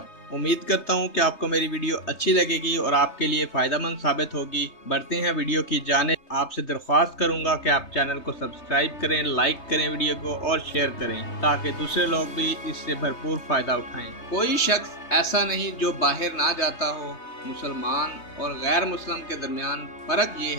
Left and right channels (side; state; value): right; late; 3.3 ms